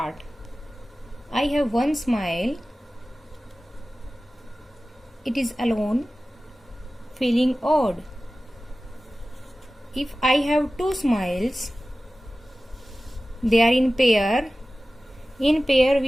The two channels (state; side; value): normal; both; correlation 0.96